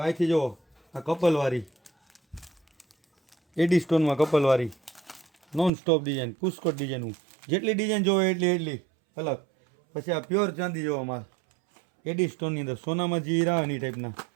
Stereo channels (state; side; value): drops out; left; at 5.7 s